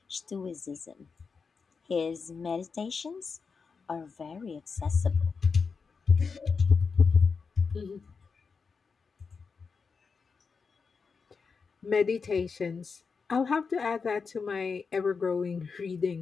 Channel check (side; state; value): right; quieter; 5.2 dB